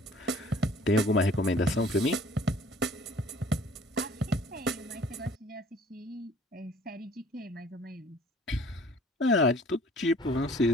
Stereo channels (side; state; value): both; normal; correlation 0.52